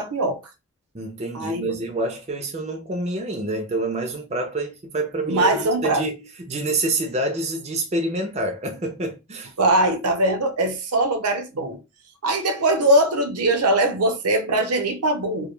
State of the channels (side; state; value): both; normal; correlation -0.17